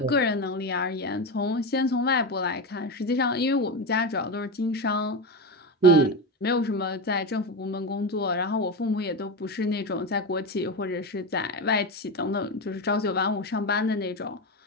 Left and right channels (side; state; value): both; normal; correlation 0.17